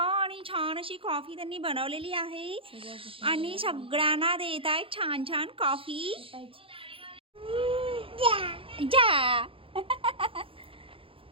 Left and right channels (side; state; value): left; late; 0.26 ms